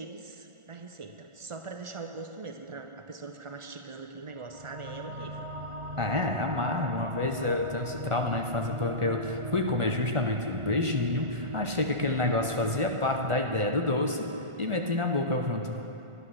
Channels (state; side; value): late; left; 1.4 ms